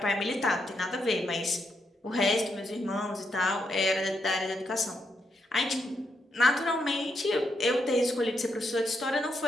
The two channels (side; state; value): both; normal; correlation 0.80